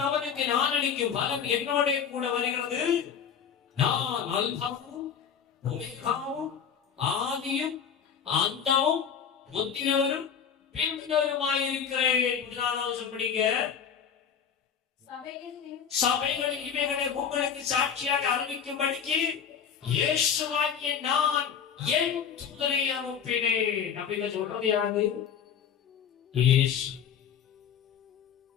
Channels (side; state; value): right; quieter; 7.6 dB